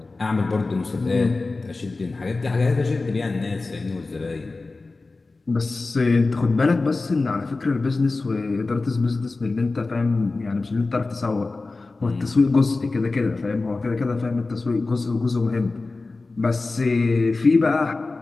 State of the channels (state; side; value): quieter; right; 3.5 dB